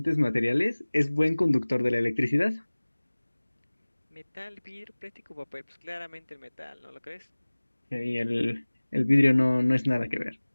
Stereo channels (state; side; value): inverted; both; correlation -1.00